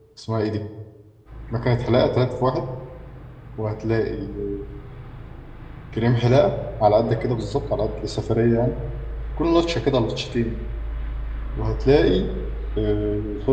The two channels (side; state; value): both; identical; correlation 1.00